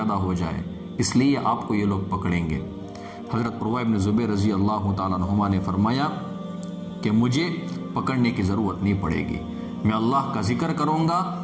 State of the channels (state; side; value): identical; both; correlation 1.00